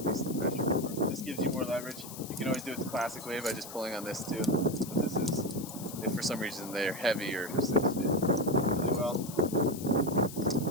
the pressure for. This gives you more leverage. You can always do it the classic way by just pulling on this too, but this is, if for some reason they're heavy or cinched it really well.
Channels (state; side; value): noise; left; hiss, 13 dB below the sound